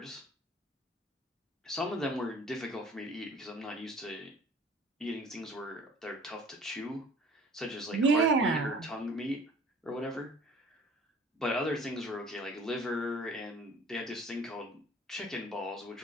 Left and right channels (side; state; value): both; normal; correlation 0.49